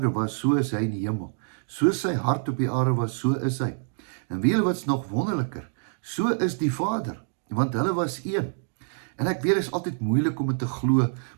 was, so is hy in die hemel. So sy hart op die aarde was, so is hy. En weet julle wat's nog wonderliker? So is die Vader, want hulle was een. En ek weet, dit is altyd moeilik om dit te glo,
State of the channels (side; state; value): left; silent; 61 dB below the other